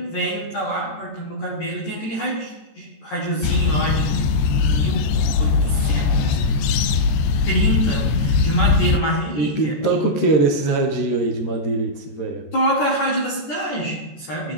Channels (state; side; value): late; right; 14 ms